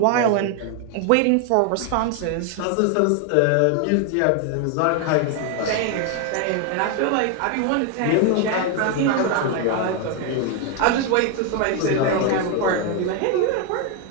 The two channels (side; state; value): both; different; correlation 0.01